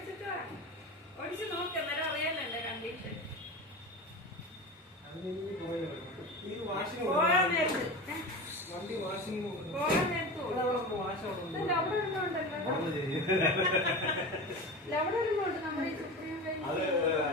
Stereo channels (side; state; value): both; normal; correlation 0.29